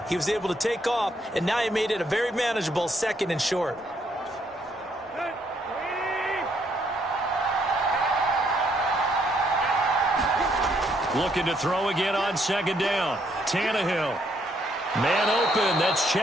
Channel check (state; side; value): normal; both; correlation 0.71